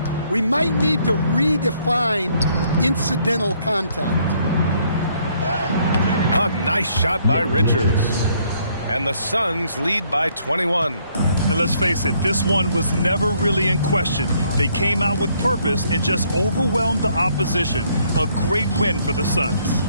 We might need to redefine incidental contact. A nice shot by Richards. And the Suns lead by 21. And let's face it, this one was never really in question. They came out with purpose and just overwhelmed the opposition. A great win for the Suns.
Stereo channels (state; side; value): inverted; both; correlation -0.67